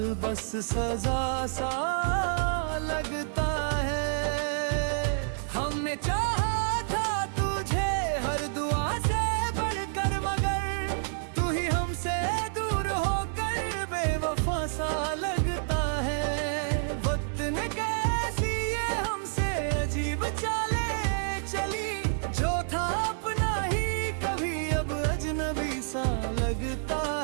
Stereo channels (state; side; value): silent; left; 58 dB below the other